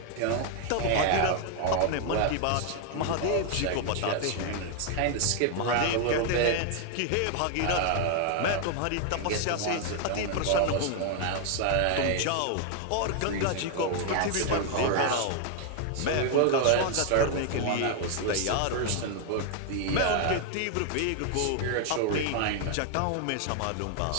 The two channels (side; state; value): both; different; correlation 0.00